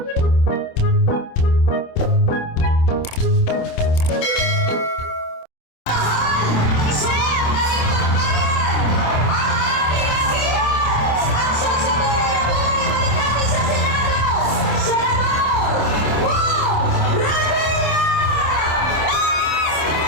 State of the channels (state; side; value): late; right; 27 ms